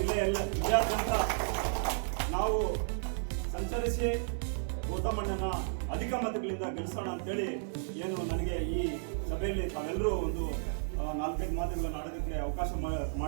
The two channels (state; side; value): silent; left; digital silence